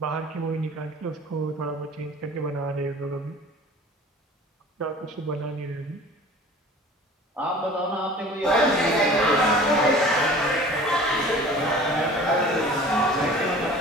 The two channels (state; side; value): normal; both; correlation 0.44